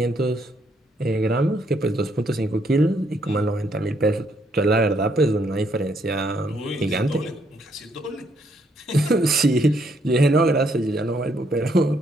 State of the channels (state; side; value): normal; both; correlation 0.72